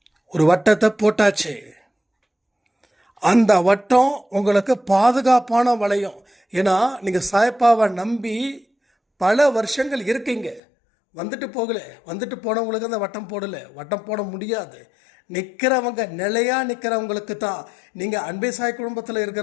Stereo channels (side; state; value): right; drops out; at 10.6 s